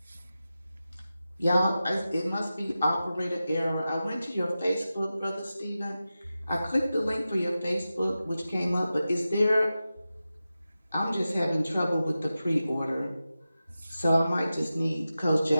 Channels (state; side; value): inverted; both; correlation -0.93